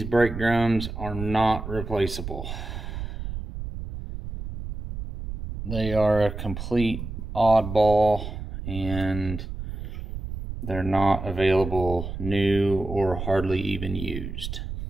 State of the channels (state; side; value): noise; right; rumble, 8 dB below the sound